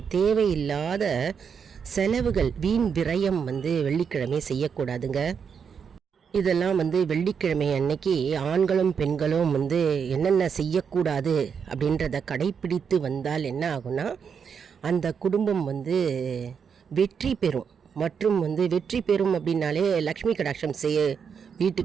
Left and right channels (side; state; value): left; quieter; 6.7 dB